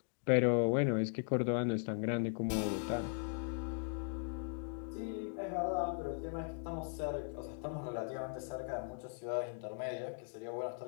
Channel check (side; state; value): right; silent; digital silence